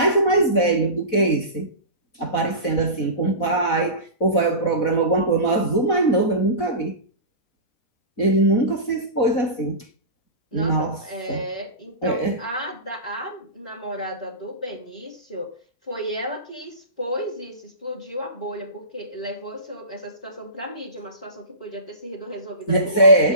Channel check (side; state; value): right; late; 4.1 ms